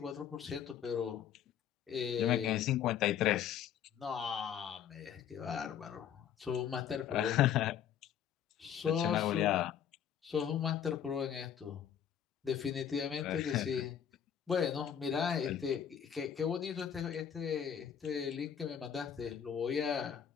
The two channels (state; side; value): quieter; right; 9.0 dB